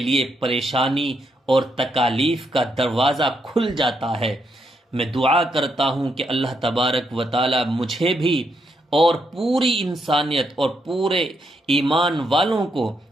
پریشانی اور تکالیف کا دروازہ کھل جاتا ہے۔ میں دعا کرتا ہوں کہ اللہ تبارک و تعالی مجھے بھی اور پوری انسانیت اور پورے ایمان والوں کو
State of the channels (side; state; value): both; normal; correlation 0.78